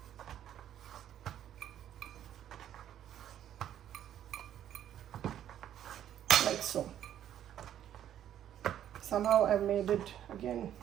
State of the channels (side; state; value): left; quieter; 10.8 dB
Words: Like so. Somehow I've made it again